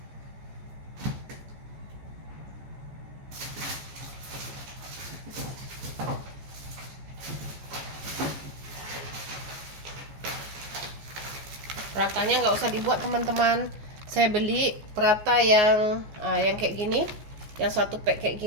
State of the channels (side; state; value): left; late; 14 ms